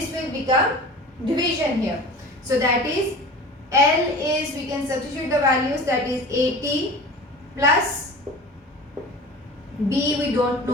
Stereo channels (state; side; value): normal; both; correlation 0.38